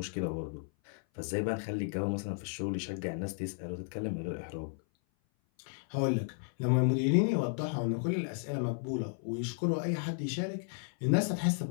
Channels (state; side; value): silent; right; 55 dB below the other